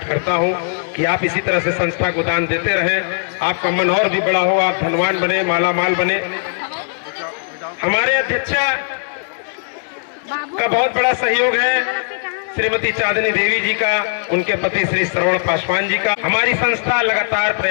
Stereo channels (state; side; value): silent; right; 66 dB below the other